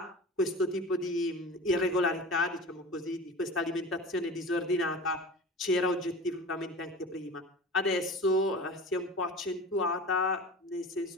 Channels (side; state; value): both; normal; correlation 0.35